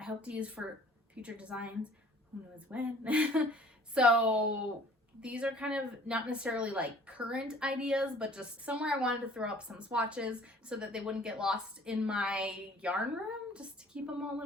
hope to use for future designs. Who knows when? So these are kind of not necessarily like current ideas, but just somewhere I wanted to throw up some swatches so that they wouldn't get lost in my yarn room, just to keep them all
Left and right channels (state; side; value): normal; both; correlation 0.52